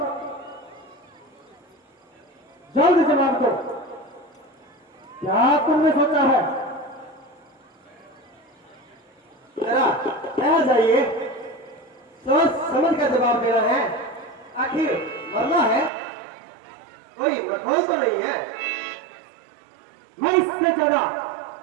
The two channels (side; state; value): left; drops out; at 15.9 s